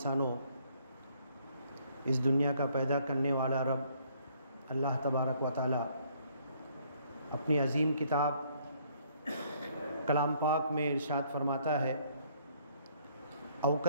इस दुनिया का पैदा करने वाला रब अल्लाह तबारक व तआला अपनी अज़ीम किताब कलाम पाक में इरशाद फरमाता है, औ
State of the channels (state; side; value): inverted; both; correlation -0.65